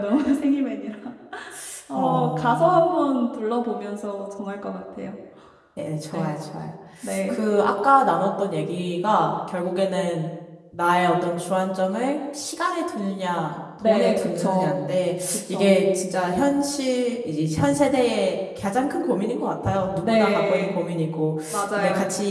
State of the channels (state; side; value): identical; both; correlation 1.00